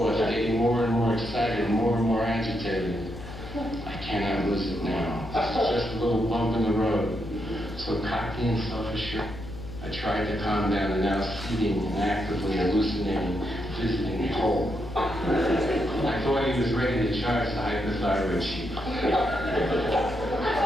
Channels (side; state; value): left; noise; hum, 12 dB below the sound